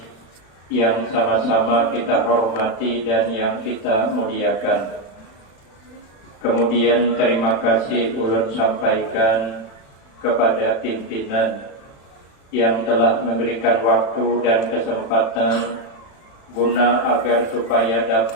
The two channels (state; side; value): late; right; 36 ms